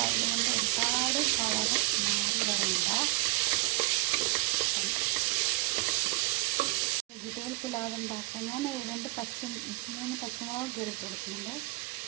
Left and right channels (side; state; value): left; quieter; 22.9 dB